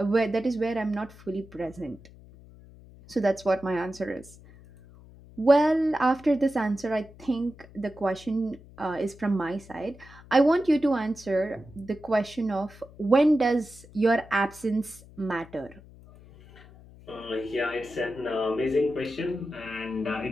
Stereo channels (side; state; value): left; noise; hum, 21 dB below the sound